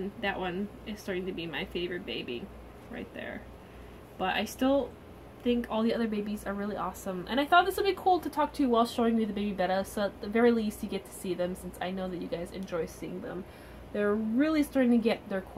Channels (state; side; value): identical; both; correlation 1.00